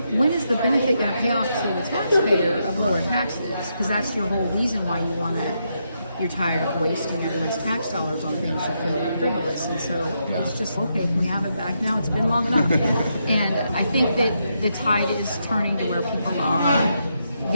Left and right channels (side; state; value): both; inverted; correlation -0.81